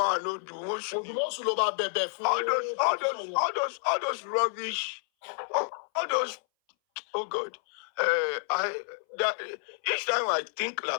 no, the most new. All those rubbish, all those. Oh God, each time I think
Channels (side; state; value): right; silent; 58 dB below the other